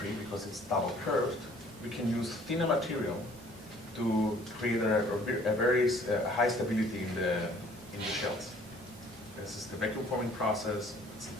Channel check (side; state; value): both; normal; correlation 0.56